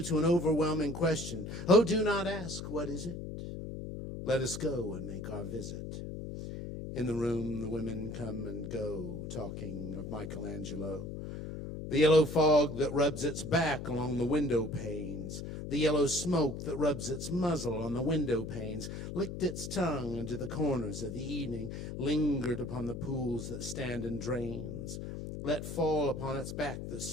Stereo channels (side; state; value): left; noise; hum, 7 dB below the sound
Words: to an overwhelming question. Oh, do not ask, what is it? Let us go and make our visit. In the room, the women come and go, talking of Michelangelo. The yellow fog that rubs its back along the window panes, the yellow smoke that rubs its muzzle on the window panes, licked its tongue into the corners of the evening, lingered upon the pools that stand in drains, let fall upon its back the